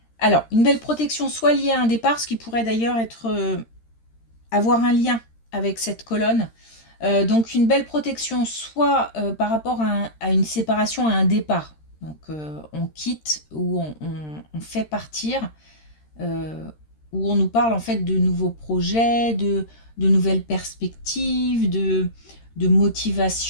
alors, une belle protection soit liée à un départ, ce qui pourrait d'ailleurs être... avoir un lien avec cette colonne. Donc, une belle protection soit par rapport à une séparation, à un départ. Donc, on quitte ou on fait partir, où on nous parle en fait de nouveaux projets, de nouvelles perspectives, de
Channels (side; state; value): right; late; 13 ms